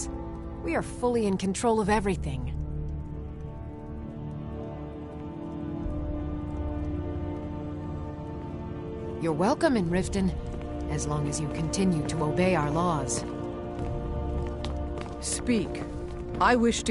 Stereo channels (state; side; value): identical; both; correlation 1.00